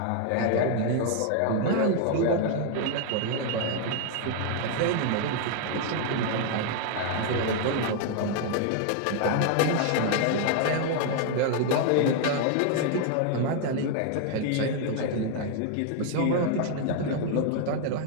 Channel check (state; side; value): different; both; correlation 0.00